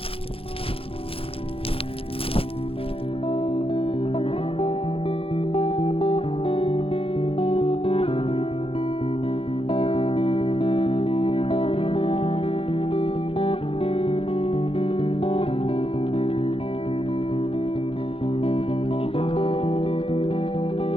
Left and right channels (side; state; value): right; late; 0.27 ms